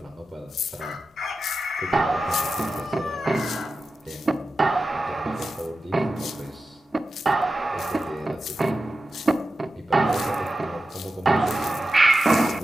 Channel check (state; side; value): normal; both; correlation 0.92